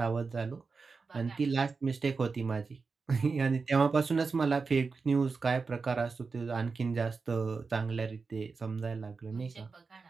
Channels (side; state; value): left; quieter; 4.6 dB